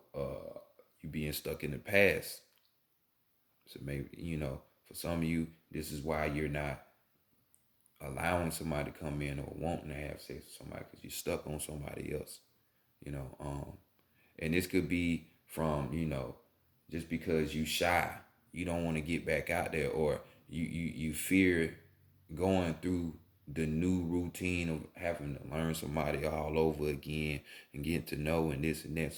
you being stuck in the past. So maybe, you know, for some of you, this is why you're not allowing somebody to come in or wanting to have sex with somebody because you're stuck on somebody else, you know. And this could be from, you know, just because you shy, you don't want to get back out there, or you fear going through the new routine of having to learn somebody all over again and getting to know and this and that.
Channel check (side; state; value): both; identical; correlation 1.00